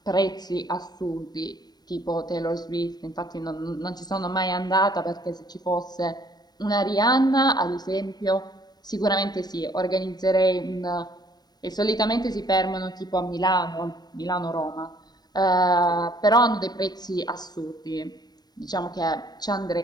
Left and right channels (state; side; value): late; right; 0.19 ms